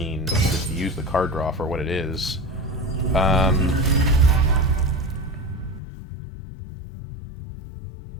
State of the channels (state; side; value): drops out; right; at 5.8 s